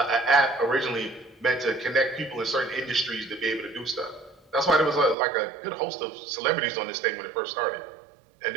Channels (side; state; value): left; drops out; at 5.2 s